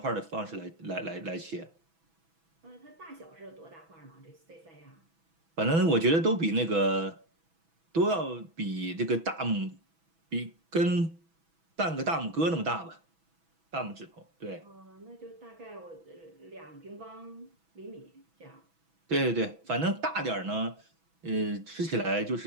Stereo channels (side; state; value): left; late; 6.1 ms